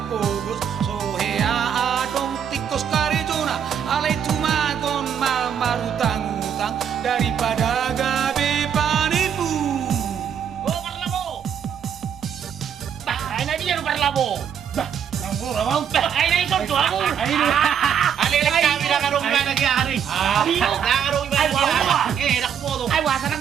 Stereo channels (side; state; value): left; quieter; 8.2 dB